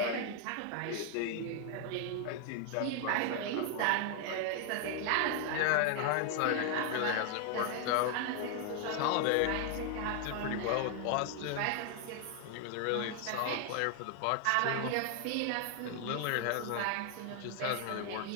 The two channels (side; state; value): both; different; correlation 0.00